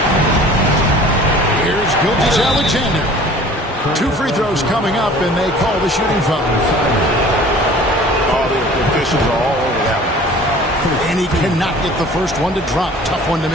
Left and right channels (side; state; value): both; normal; correlation 0.47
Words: Here's Gilgeous-Alexander. 2 free throws coming up, and they call the shooting foul. All the officials are all over that one. And he cannot get the first one to drop. Tough one to